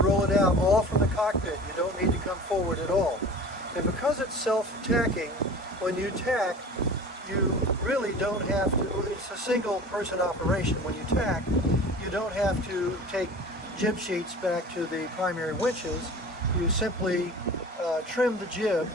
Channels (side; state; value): both; normal; correlation 0.39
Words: roll it out, all from the cockpit. You don't need to come forward at all. And because it's self-tacking, when you tack, you really don't have to, it's a single person operation. When you tack, you don't have to take jib sheets back to the primary winches. You simply trim the jib